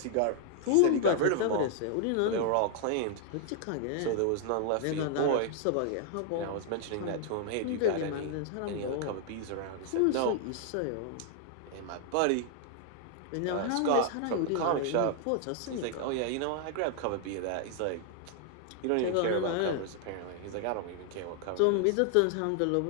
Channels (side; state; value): both; different; correlation 0.00